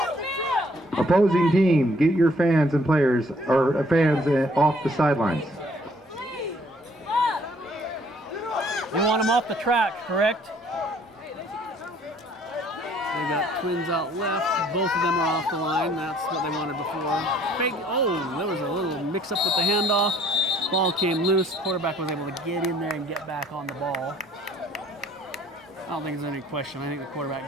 Opposing team, get your fans and players, or fans off the sidelines. You want them off the track, correct? They got twins out left. Both of them are off the line. That's what they wanted before. Fake. Oh, there was a little mix-up with the handoff. Ball came loose. Quarterback was able to get in there and get back on the ball. I don't think there's any question. I think the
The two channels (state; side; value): normal; both; correlation 0.61